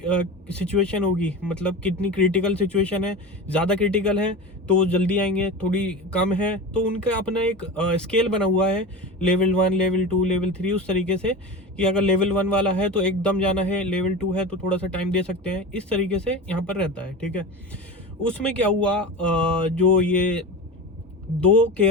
सिचुएशन होगी, मतलब कितनी क्रिटिकल सिचुएशन है, ज़्यादा क्रिटिकल है तो जल्दी आएंगे, थोड़ी कम है तो उनका अपना एक स्केल बना हुआ है, लेवल 1, लेवल 2, लेवल 3, उस तरीके से कि अगर लेवल 1 वाला है तो एकदम जाना है, लेवल 2 है तो थोड़ा सा टाइम दे सकते हैं, इस तरीके से यहाँ पर रहता है, ठीक है। उसमें क्या हुआ, जो ये दो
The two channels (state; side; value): normal; both; correlation 0.28